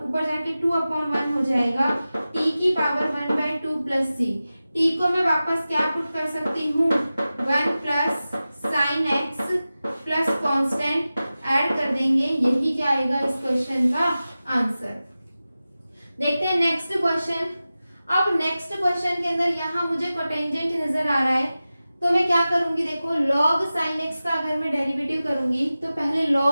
ऊपर जाके 2/1 हो जाएगा, t की पावर 1/2 प्लस c। t को मैं वापस क्या पुट कर सकती हूँ, 1 plus sine x plus constant add कर देंगे, यही क्या आएगा इस क्वेश्चन का आंसर। देखते हैं नेक्स्ट क्वेश्चन। अब नेक्स्ट क्वेश्चन के अंदर यहाँ मुझे कोटेंजेंट नजर आ रहा है, तो मैं क्या करूंगी, देखो log sin x का अगर मैं डेरिवेटिव करूंगी तो पहले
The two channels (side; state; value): both; inverted; correlation -0.95